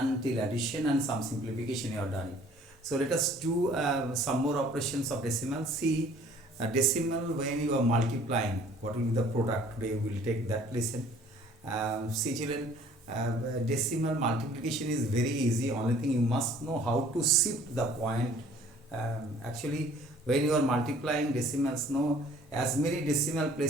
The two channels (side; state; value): both; normal; correlation 0.54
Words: till addition and some simplification you have done it. So let us do some more operations of decimals. See, decimal when you are multiplying, what will be the product? Today we will take that lesson. See children, decimal multiplication is very easy. Only thing you must know how to shift the point. Actually, when you are multiplying decimals, no, as many decimal